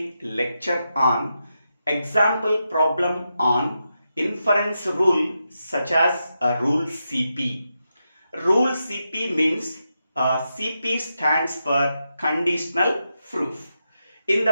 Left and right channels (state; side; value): inverted; both; correlation -0.86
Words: lecture on example problem on inference rule such as rule CP. Rule CP means CP stands for conditional proof. In